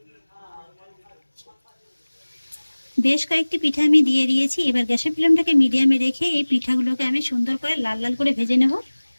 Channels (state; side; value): inverted; both; correlation -1.00